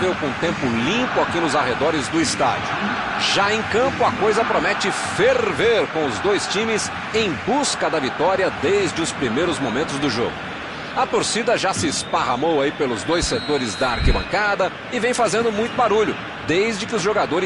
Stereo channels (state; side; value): identical; both; correlation 1.00